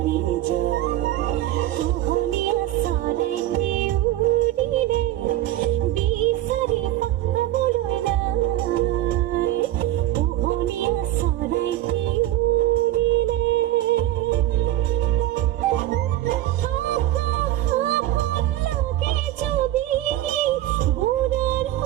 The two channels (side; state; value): left; quieter; 14.3 dB